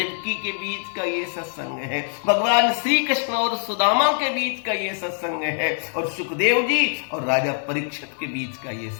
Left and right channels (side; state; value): right; silent; digital silence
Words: के बीच का ये सत्संग है, भगवान श्री कृष्ण और सुदामा के बीच का ये सत्संग है, और सुखदेव जी और राजा परीक्षित के बीच का ये